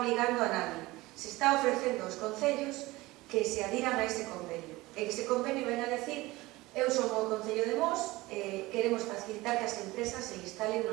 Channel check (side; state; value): left; quieter; 20.0 dB